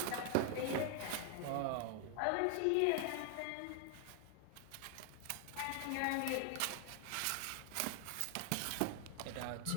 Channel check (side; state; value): both; different; correlation 0.00